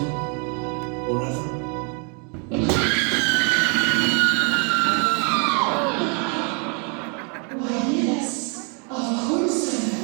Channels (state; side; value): quieter; left; 36.9 dB